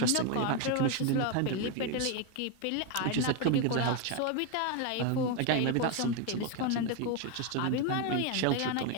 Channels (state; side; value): different; both; correlation 0.02